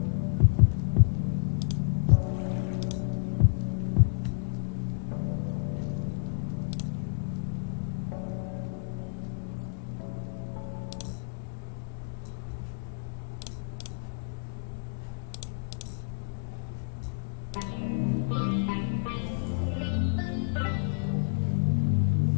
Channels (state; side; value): silent; right; digital silence